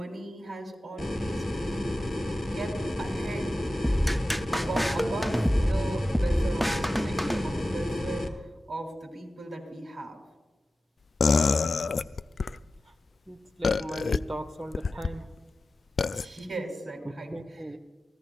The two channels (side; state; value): both; normal; correlation 0.95